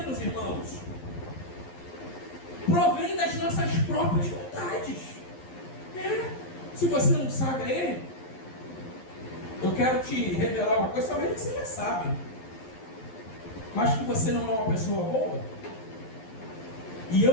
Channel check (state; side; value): late; right; 11 ms